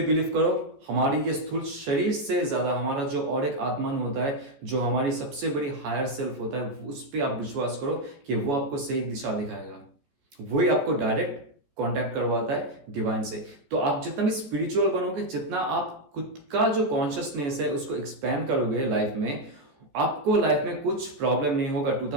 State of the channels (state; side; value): late; left; 14 ms